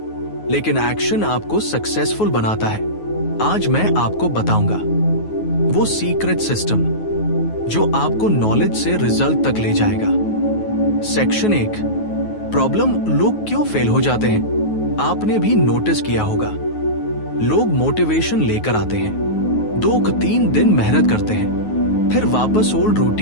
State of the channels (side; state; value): right; late; 9.4 ms